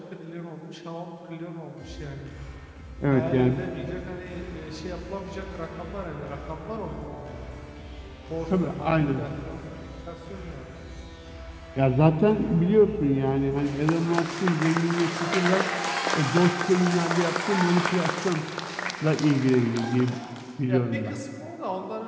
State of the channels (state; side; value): identical; both; correlation 1.00